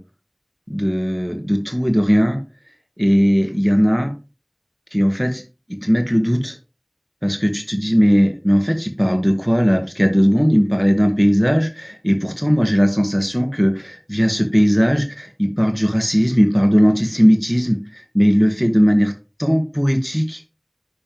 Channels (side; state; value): both; identical; correlation 1.00